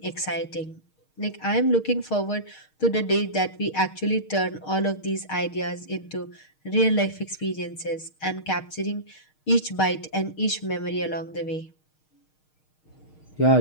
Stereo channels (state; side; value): late; right; 6.5 ms